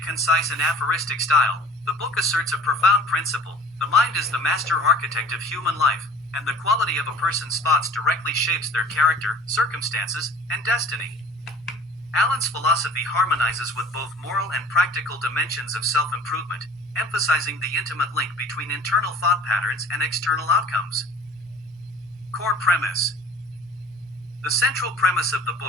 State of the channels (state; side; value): normal; both; correlation 0.45